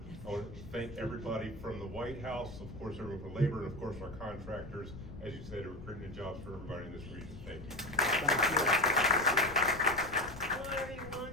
I want to thank everybody from the White House, of course everyone for labor, and of course our contractors, as you said, are creating jobs for everybody in this region. Thank you. Hello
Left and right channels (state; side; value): noise; left; rumble, 13 dB below the sound